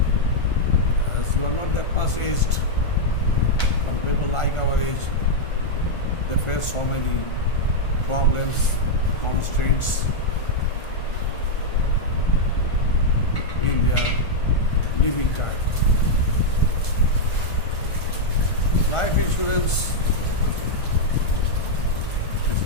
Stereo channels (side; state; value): right; late; 1.5 ms